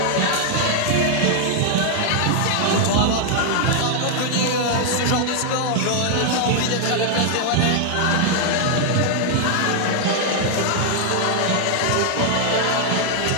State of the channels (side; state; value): both; different; correlation 0.00